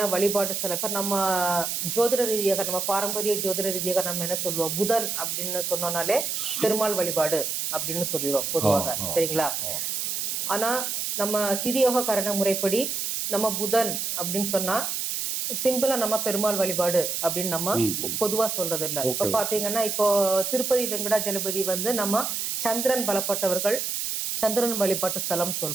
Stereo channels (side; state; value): right; noise; hiss, 2 dB below the sound